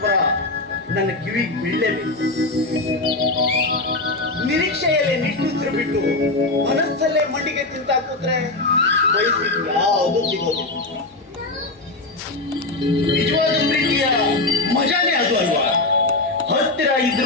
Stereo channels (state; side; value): quieter; right; 3.0 dB